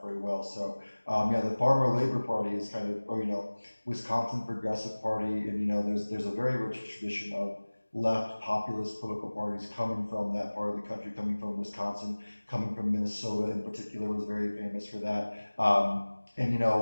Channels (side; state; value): both; inverted; correlation -1.00